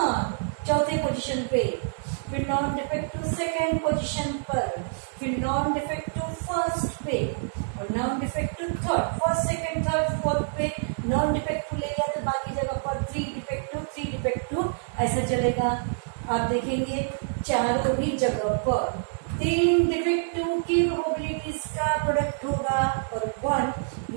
चौथे पोजीशन पे, फिर नॉन डिफेक्टिव सेकेंड पोजीशन पर, फिर नॉन डिफेक्टिव फर्स्ट पे, और non defective third, first second third fourth पे नॉन डिफेक्टिव ले लिया तो बाकी जगह पर 3 डिफेक्टिव ऐसा चलेगा। आप देखेंगे चारों ही जगह पर 3 डिफेक्टिव की प्रोबेबिलिटीज का प्रोडक्ट होगा और 1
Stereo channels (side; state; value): left; silent; 60 dB below the other